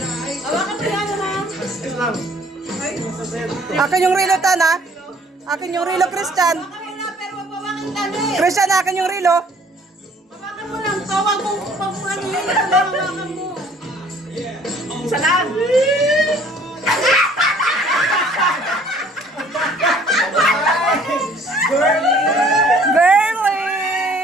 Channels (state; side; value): normal; both; correlation 0.56